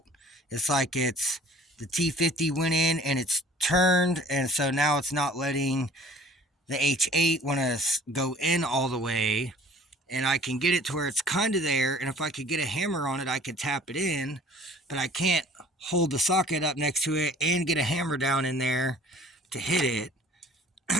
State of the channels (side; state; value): both; normal; correlation 0.51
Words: it's like it's the T50 went in and it's turned, and so now it's not letting the H8 want to go in all the way. And I can get it to where it's kind of there, and if I could get a hammer on it, I could tap it in, but I can't hold the socket up next to it and get a hammer down in there to hit it.